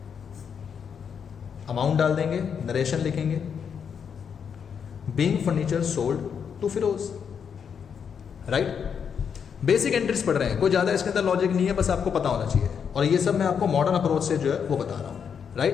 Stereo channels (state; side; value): quieter; right; 7.1 dB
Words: amount डाल देंगे, नरेशन लिखेंगे, being furniture sold to Firoz, right. Basic entries पढ़ रहे हैं, कोई ज़्यादा इसके अंदर लॉजिक नहीं है, बस आपको पता होना चाहिए। और ये सब मैं आपको मॉडर्न अप्रोच से जो है वो बता रहा हूँ,